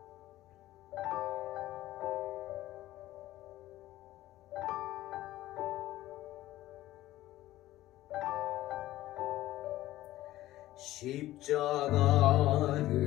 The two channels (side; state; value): right; quieter; 15.4 dB